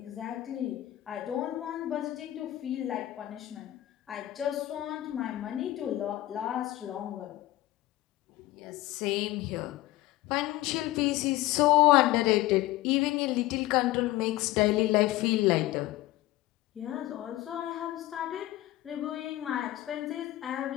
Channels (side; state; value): right; quieter; 16.1 dB